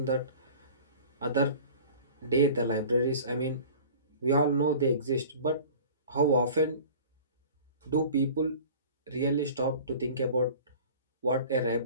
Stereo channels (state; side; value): inverted; both; correlation -0.42